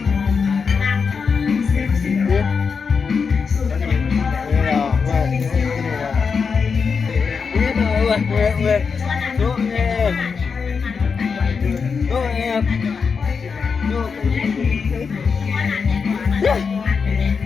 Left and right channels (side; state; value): right; quieter; 5.6 dB